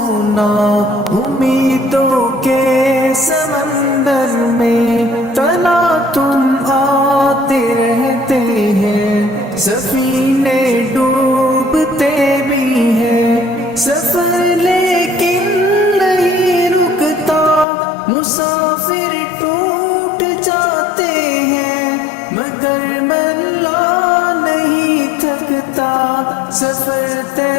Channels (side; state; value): right; drops out; at 17.7 s